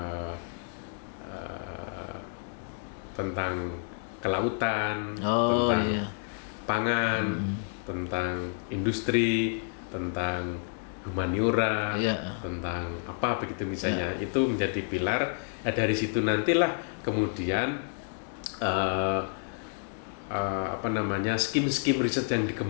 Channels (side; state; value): right; silent; 58 dB below the other